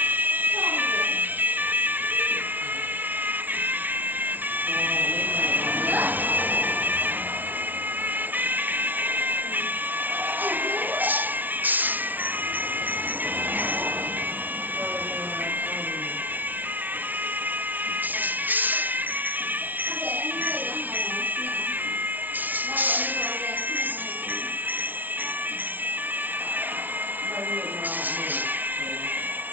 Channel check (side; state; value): left; late; 0.089 ms